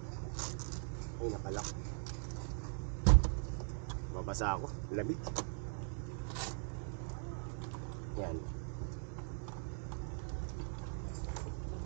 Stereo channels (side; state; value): left; silent; 51 dB below the other